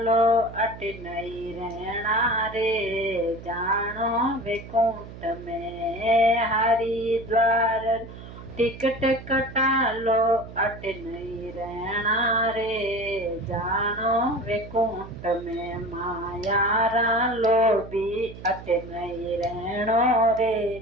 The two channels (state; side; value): noise; right; hum, 14 dB below the sound